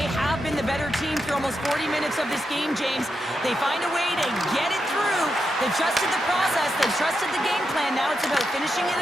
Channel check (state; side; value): normal; both; correlation 0.86